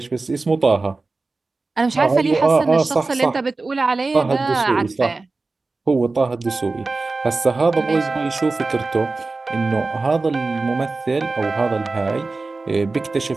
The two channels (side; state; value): left; quieter; 3.6 dB